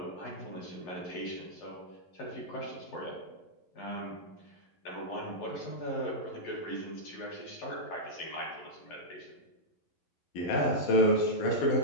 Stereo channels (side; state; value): right; late; 11 ms